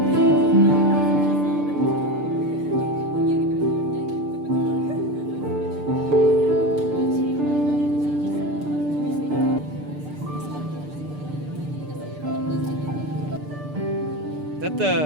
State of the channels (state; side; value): late; left; 6.7 ms